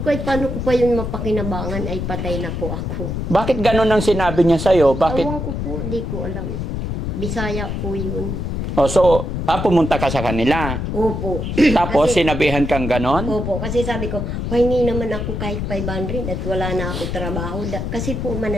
ko, ay paano ko pa yun mapakinabangan, ay patay na po ako. Bakit ganun ang sinabi niya sa'yo? Bakit? Awang ko po, di ko alam. Bisaya po yun. So, pumunta ka sa kanila? Opo. Tapos, kasi, sinabihan kang ganon? Opo, kasi sabi ko, hindi naman ako kahit 500 at wala na ako trabaho. Kasi po,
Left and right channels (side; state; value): left; noise; rumble, 3 dB below the sound